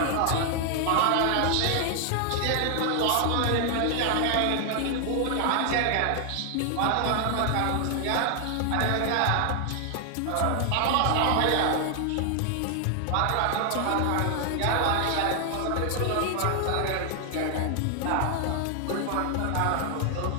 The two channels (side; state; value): both; different; correlation 0.00